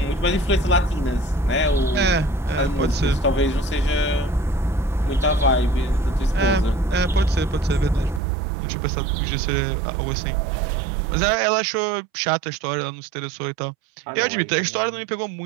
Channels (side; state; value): left; drops out; at 8.2 s